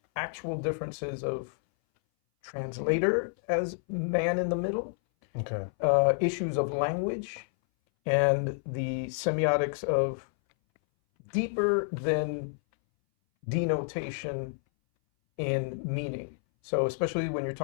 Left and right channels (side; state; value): right; silent; 58 dB below the other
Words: actual differences of translator as man in the middle, issues of language, and the semiotics of deeper than denotation in meaning. So especially when you're